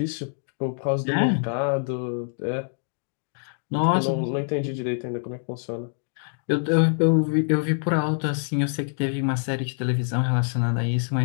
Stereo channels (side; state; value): right; silent; digital silence